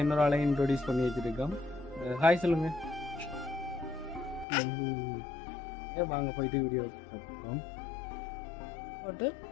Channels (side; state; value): right; drops out; at 4.5 s